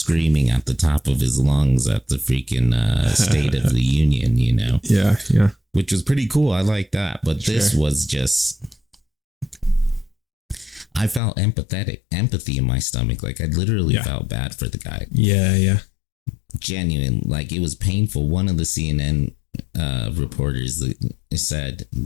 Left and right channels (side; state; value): right; drops out; at 11.2 s